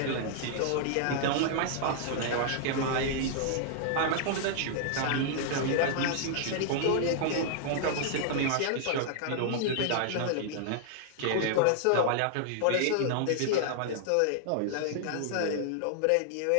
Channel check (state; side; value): different; both; correlation -0.01